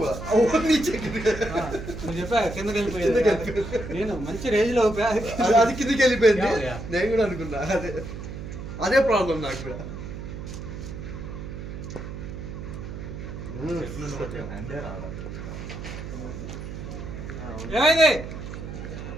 वो नीचे गिर गया. हाँ, मुझे पे కిందకి వెళ్ళిపోయింది. నేను మంచి రేంజ్ లో అది కిందికి వెళ్ళిపోయింది. Yeah. నేను కూడా అనుకున్నా అదే ప్రాబ్లం నాకు కూడా. ఏమైంది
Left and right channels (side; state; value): right; noise; hum, 9 dB below the sound